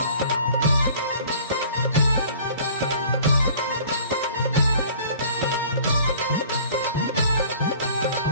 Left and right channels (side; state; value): both; inverted; correlation -0.49